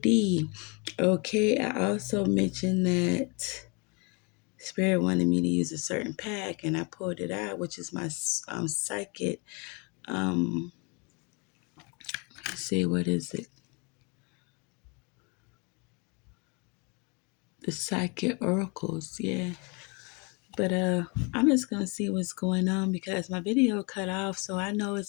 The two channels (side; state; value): right; quieter; 31.9 dB